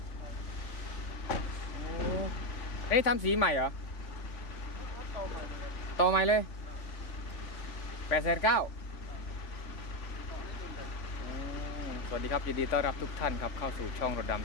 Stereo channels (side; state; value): right; late; 3.5 ms